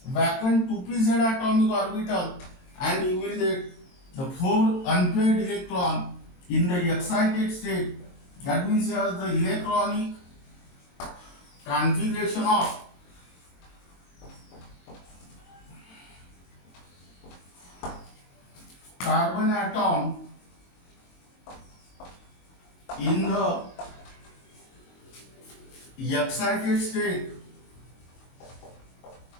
vacant 2pz atomic orbital, and you will get the 4 unpaired electron in the excited state. That means here the electronic configuration of carbon atom in the excited state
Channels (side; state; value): right; late; 22 ms